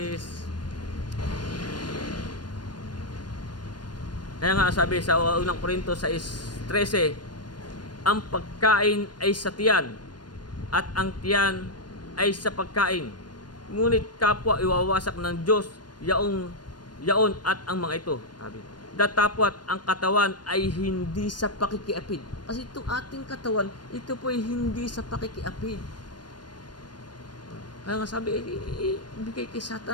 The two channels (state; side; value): late; right; 0.71 ms